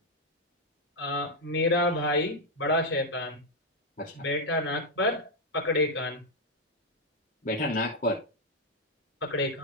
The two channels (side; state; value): both; normal; correlation 0.00